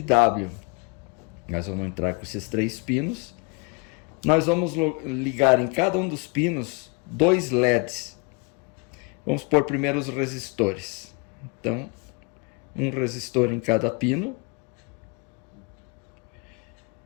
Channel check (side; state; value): right; quieter; 29.5 dB